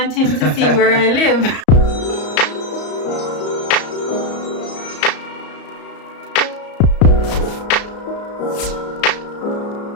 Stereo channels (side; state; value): right; late; 34 ms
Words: him to see where I live.